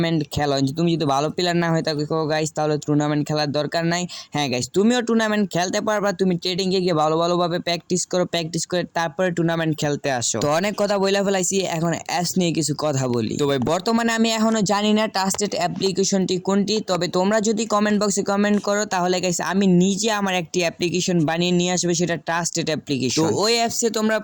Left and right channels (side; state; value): both; identical; correlation 1.00